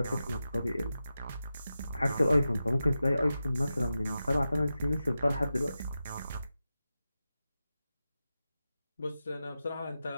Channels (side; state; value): both; inverted; correlation -0.92